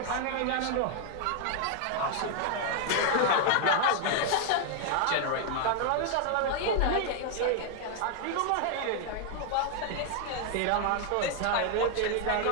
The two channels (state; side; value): different; both; correlation 0.00